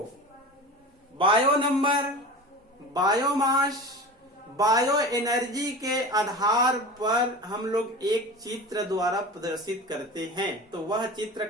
bio number, biomass, bio energy के आधार पर हम लोग एक चित्र द्वारा प्रदर्शित करते हैं। तो वह चित्र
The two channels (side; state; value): both; normal; correlation 0.32